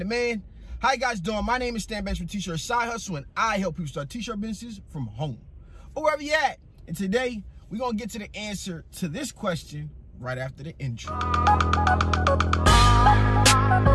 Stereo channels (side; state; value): both; identical; correlation 1.00